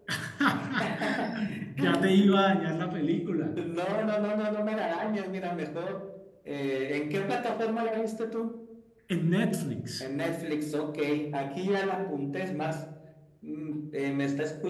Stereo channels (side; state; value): both; identical; correlation 1.00